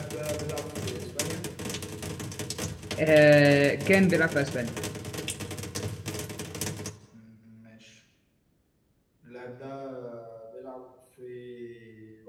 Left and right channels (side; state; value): both; identical; correlation 1.00